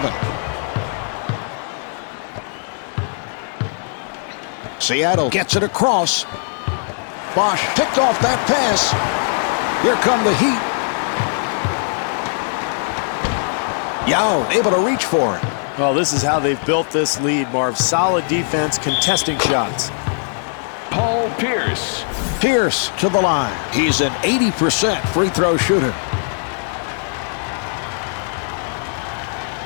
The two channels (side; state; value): right; silent; 66 dB below the other